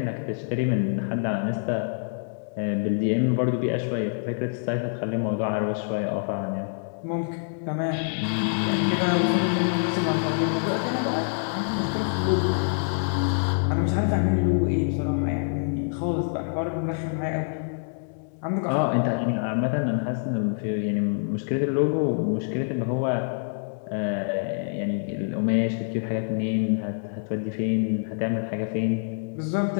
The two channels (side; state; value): right; silent; digital silence